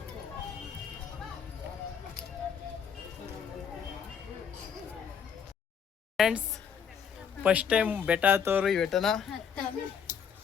Friends, first time ಬೆಟ್ಟ ಹತ್ತೋರು ಈ ಬೆಟ್ಟನ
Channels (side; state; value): right; quieter; 7.2 dB